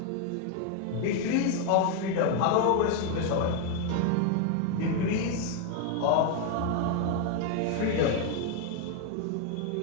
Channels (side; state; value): both; different; correlation 0.01